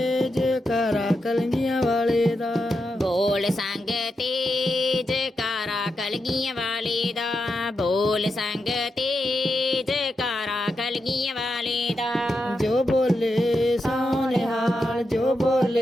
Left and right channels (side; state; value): both; normal; correlation 0.86